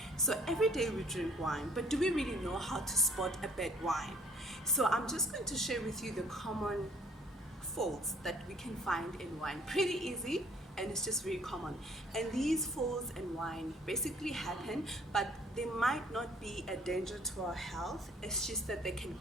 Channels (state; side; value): normal; both; correlation 0.58